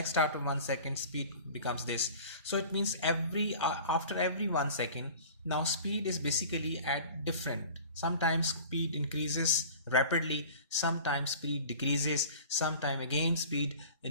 after 1 second speed becomes this. So it means after every 1 second now speed is basically at different. Sometimes speed increases rapidly, sometimes speed decreases, sometimes again speed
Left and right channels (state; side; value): inverted; both; correlation -0.42